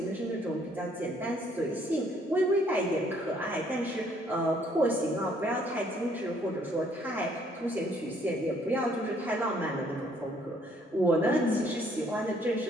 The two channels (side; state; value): both; normal; correlation 0.64